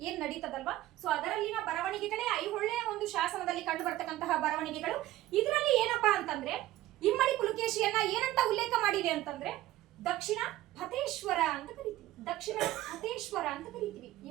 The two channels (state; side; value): quieter; left; 15.4 dB